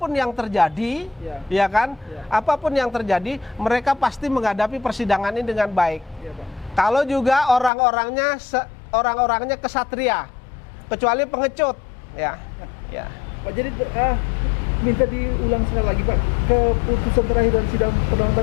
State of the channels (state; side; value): drops out; right; at 7.7 s